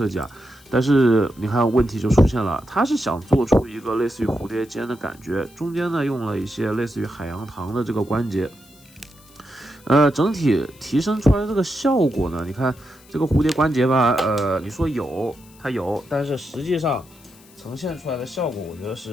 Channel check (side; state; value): left; noise; hiss, 26 dB below the sound